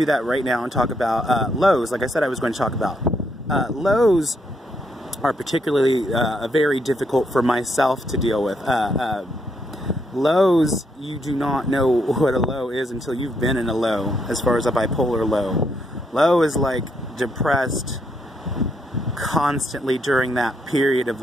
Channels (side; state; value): both; normal; correlation 0.76